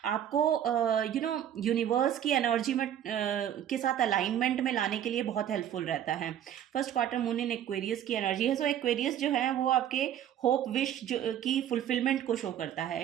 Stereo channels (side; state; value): left; quieter; 10.4 dB